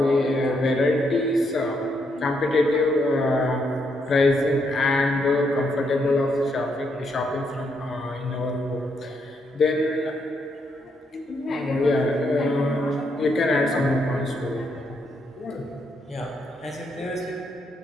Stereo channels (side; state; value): both; normal; correlation 0.77